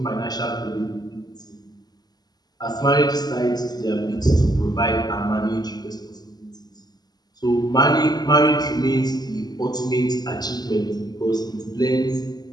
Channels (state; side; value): late; right; 0.20 ms